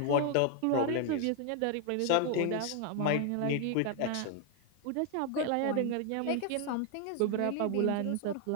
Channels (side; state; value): both; different; correlation 0.00